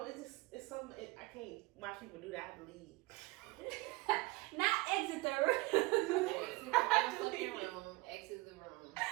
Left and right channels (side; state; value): left; quieter; 22.2 dB